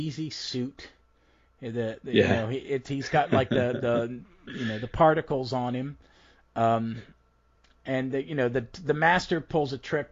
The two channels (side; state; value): both; identical; correlation 1.00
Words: suit. Yeah. He's got like the particles on him. And the master pulls a